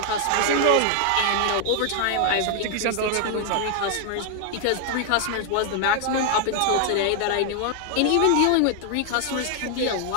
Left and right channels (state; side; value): different; both; correlation 0.00